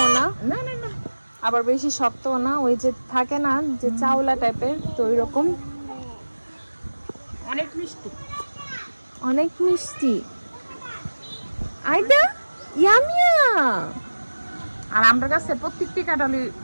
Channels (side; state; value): both; inverted; correlation -1.00